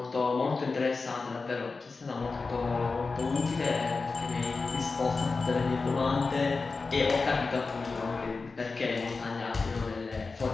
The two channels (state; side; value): quieter; right; 4.1 dB